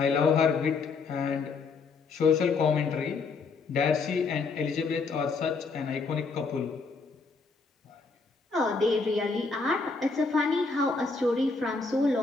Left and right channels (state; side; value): quieter; right; 4.4 dB